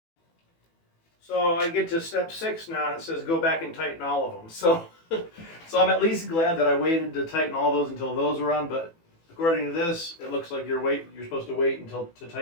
So I get to step 6 now, and it says go back and tighten all of them. So I'm at least glad that I waited to tighten all those until those were on. But according to this, it looks like you're supposed to wait to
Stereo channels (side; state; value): right; late; 18 ms